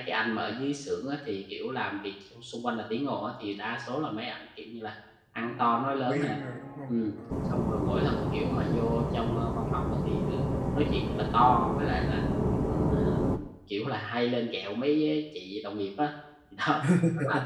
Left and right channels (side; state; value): both; identical; correlation 1.00